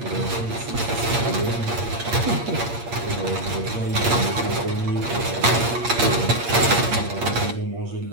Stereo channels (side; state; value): left; late; 8.5 ms